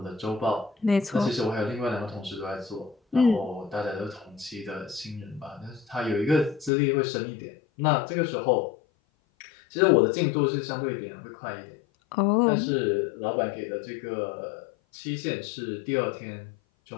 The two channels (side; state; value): right; drops out; at 6.7 s